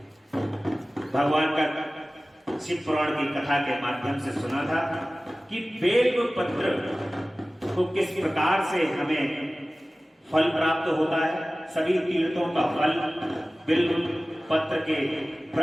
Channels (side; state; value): both; normal; correlation 0.97